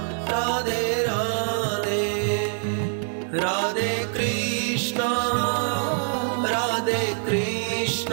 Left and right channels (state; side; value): silent; left; 62 dB below the other